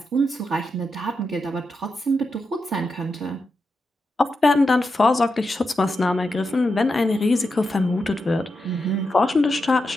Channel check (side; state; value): both; normal; correlation 0.87